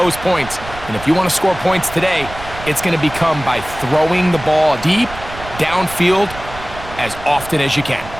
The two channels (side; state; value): right; noise; rumble, 14 dB below the sound